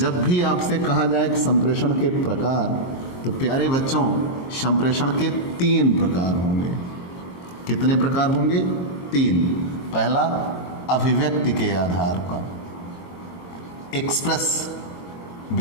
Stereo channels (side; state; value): right; late; 23 ms